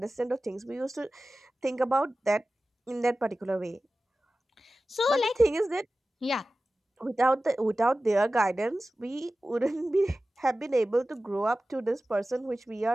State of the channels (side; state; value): both; normal; correlation 0.95